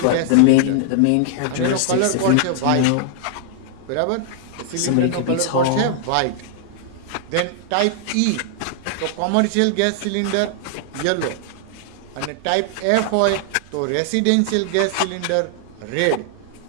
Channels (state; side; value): different; both; correlation -0.01